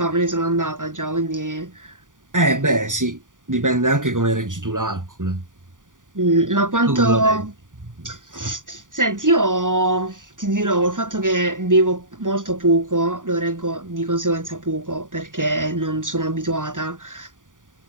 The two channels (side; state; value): left; late; 0.88 ms